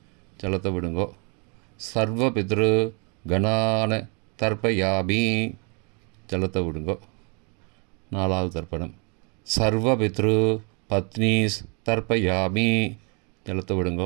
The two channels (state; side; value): quieter; left; 35.0 dB